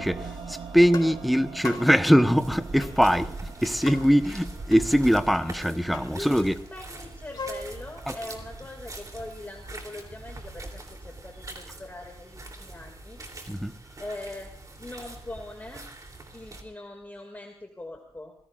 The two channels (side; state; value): both; normal; correlation 0.97